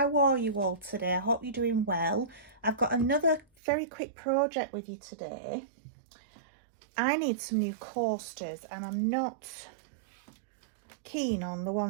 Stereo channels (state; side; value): drops out; left; at 3.5 s